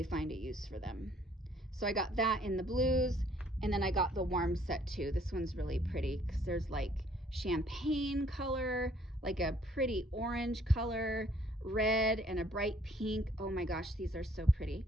find a use for them. So I got that in the blues, and then I got the warm set too. This one's really pretty because there's like champagne color, like a pretty orange color, red, and a bright pink. Oh my gosh, these are so pretty.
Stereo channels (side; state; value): both; normal; correlation 0.62